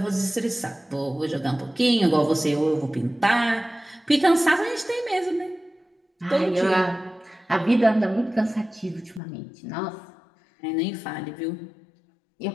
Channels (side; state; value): right; drops out; at 9.2 s